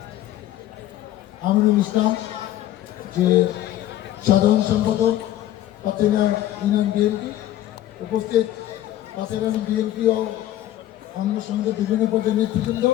আমিনুল ইসলাম, যে সাধারণ সম্পাদক পাথেরিয়া ইউনিয়ন বিএনপি, উপস্থিত পাথেরিয়া বিএনপি ও অন্য সঙ্গে বিভিন্ন পদের নেতৃবৃন্দ,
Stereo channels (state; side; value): quieter; right; 13.4 dB